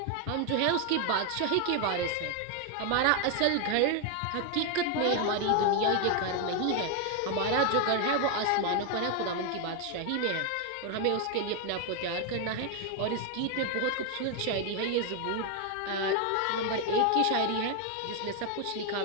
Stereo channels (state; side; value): different; both; correlation 0.01